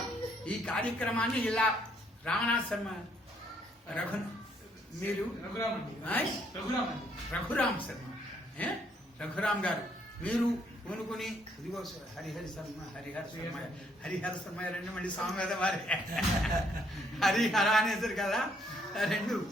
ఈ కార్యక్రమాన్ని ఇలా రామనాథ్ శర్మ మీరు రఘురామ్ శర్మ రఘురామ్ గారు మీరు పూనుకుని ఇదిగో హరిహర శర్మ రెండు మళ్ళీ సామవేదం వారే హరిహర అనేసరి కదా, రెండు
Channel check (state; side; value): normal; both; correlation 0.69